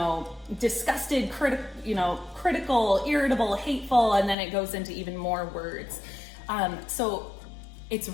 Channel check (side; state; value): right; drops out; at 4.4 s